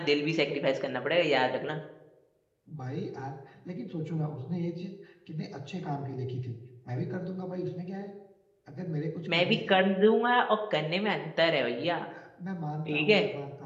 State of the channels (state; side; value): identical; both; correlation 1.00